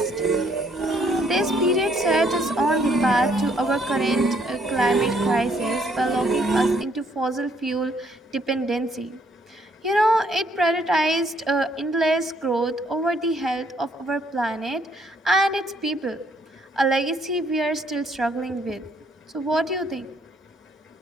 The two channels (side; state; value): both; normal; correlation 0.68